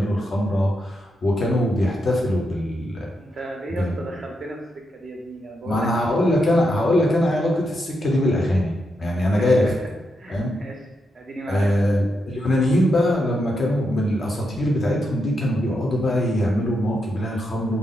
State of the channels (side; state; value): both; normal; correlation 0.83